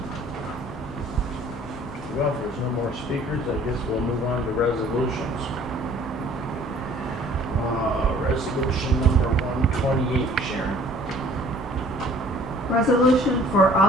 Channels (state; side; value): normal; both; correlation 0.54